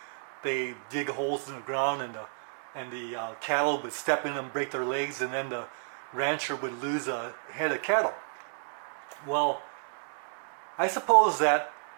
they dig holes in the ground, and the cattle would step in and break their legs, and then the rancher would lose a head of cattle. Well, I suppose that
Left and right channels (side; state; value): left; silent; digital silence